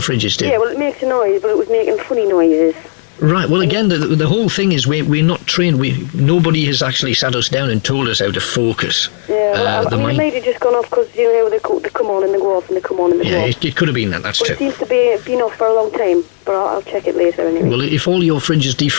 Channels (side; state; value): right; silent; digital silence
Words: do. Yeah, well, it makes a noise, but it was making funny noises. Right, well again, the whole thing is we're not trained. Nobody has actually sat us down and told us how to focus. Yeah, well, I mean, it might have just gone off because, you know, they come on and they go off and they come on and they go off. It could have been that, that's true. It seems to be been off for a long time, but I'll check it later anyway. Well, if all your fridge is